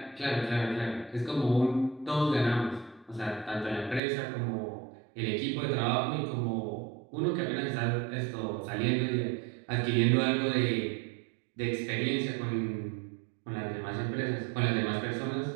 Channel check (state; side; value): drops out; left; at 4.0 s